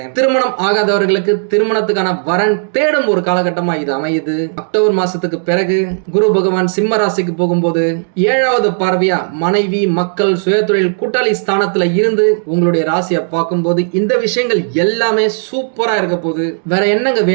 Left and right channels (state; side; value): silent; left; digital silence